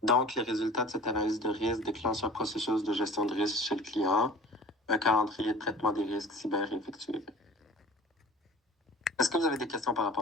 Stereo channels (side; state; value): both; normal; correlation 0.43